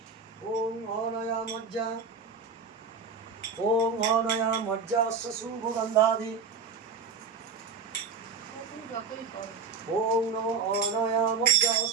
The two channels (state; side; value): quieter; left; 5.2 dB